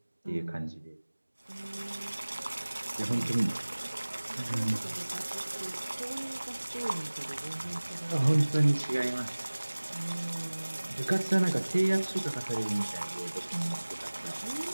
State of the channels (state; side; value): inverted; both; correlation -1.00